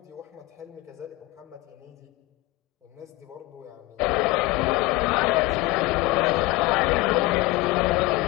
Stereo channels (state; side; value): quieter; right; 19.8 dB